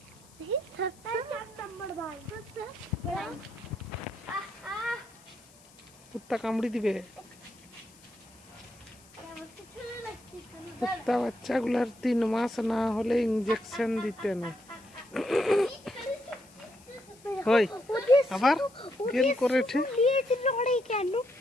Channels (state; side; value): noise; left; hiss, 26 dB below the sound